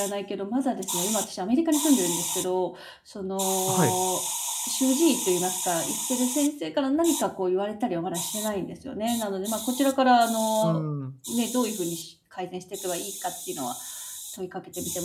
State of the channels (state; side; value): identical; both; correlation 1.00